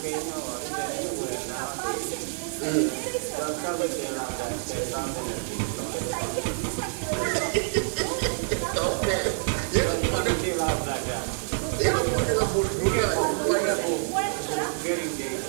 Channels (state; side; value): silent; left; digital silence